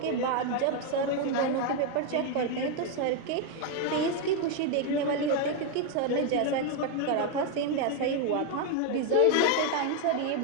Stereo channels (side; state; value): both; different; correlation 0.01